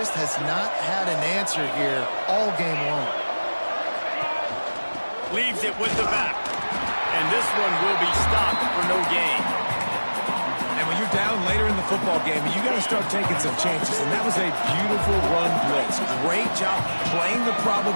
has not had an answer here all game long. Leaves it with the back. And this one will be stopped for no gain. And when you're down later in the football game, you got to start taking some chances. And that was a beautiful run blitz. Great job playing the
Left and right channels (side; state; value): both; inverted; correlation -1.00